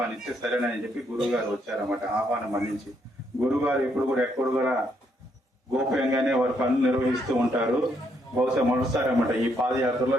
సరేనని చెప్పి గురువు గారు వచ్చారన్నమాట. ఆహ్వానం మన్నించి గురువు గారు ఇప్పుడు కూడా ఎక్కడ కూడా గోప్యంగానే వారి పనులు నిర్వహిస్తూ ఉంటారు. బహుశా మొదటిసారి అన్నమాట ఈ పాదయాత్రలో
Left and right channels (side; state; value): both; normal; correlation 0.74